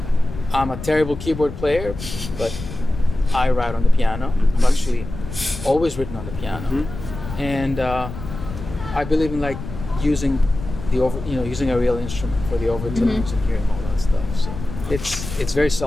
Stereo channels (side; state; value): left; noise; rumble, 10 dB below the sound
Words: I'm a terrible keyboard player, but I write on the piano. I've actually always written on the piano, and I believe in like using using a real instrument for the overtones and hearing all that stuff. So it's very